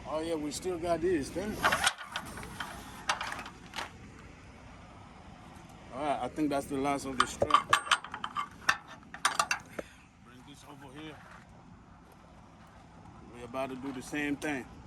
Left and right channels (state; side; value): identical; both; correlation 1.00